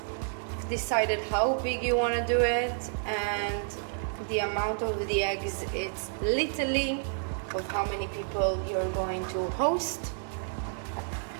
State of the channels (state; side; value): silent; left; digital silence